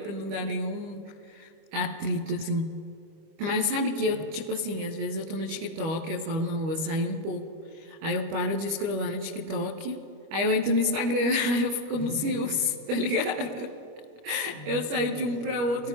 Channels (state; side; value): late; left; 25 ms